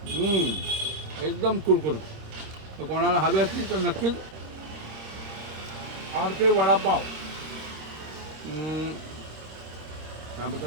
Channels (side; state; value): left; late; 26 ms